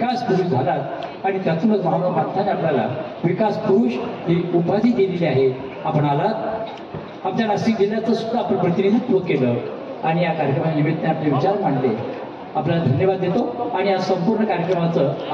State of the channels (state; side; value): identical; both; correlation 1.00